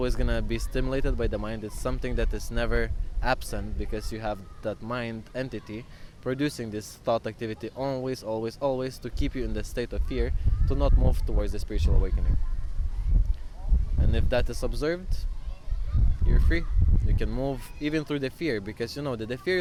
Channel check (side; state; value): both; identical; correlation 1.00